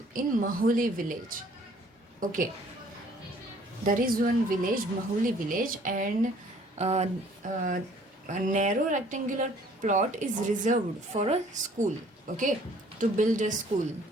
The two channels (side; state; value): both; normal; correlation 0.57